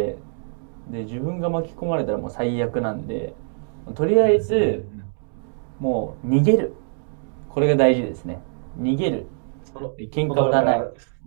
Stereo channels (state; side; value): silent; left; digital silence